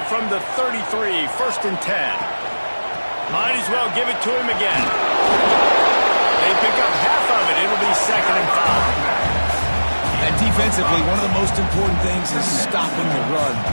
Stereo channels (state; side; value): inverted; both; correlation -1.00